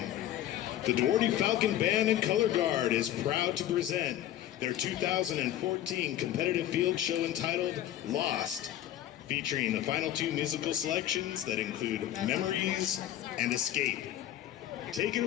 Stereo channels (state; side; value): quieter; right; 12.5 dB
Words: The Duarte Falcon Band and Color Guard is proud to present their 2014 competitive field show entitled Lost, featuring the final two musical selections that include Memories and Escape. Take it